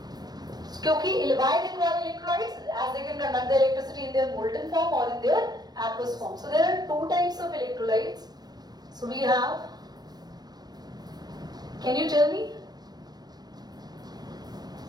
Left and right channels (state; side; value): late; left; 0.19 ms